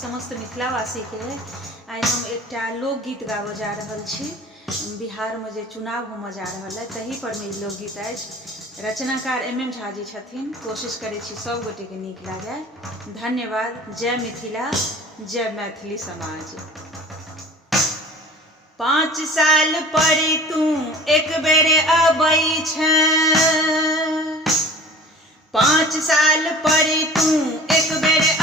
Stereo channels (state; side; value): normal; both; correlation 0.43